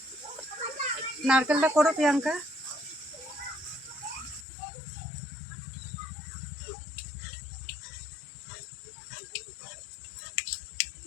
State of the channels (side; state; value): right; drops out; at 4.5 s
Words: নারকেলটা করো প্রিয়াঙ্কা।